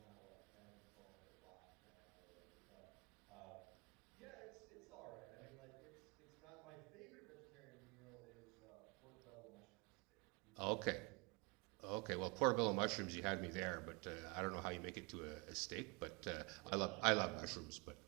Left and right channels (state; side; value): quieter; left; 29.1 dB